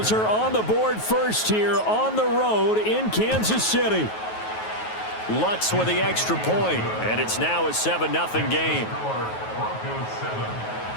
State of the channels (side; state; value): right; late; 9.3 ms